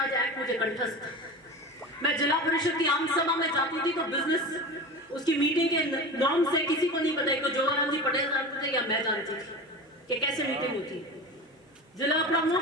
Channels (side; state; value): both; normal; correlation 0.30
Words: एक्ट मुझे कंठस्थ था। मैं जिला परिषद की आम सभा में जाती थी तो बिजनेस उसकी मीटिंग के नॉर्म से किसी को नहीं पता, जोगाराम जी पटेल जानते थे या मैं जानती थी कि कैसे मीटिंग होती है। जिला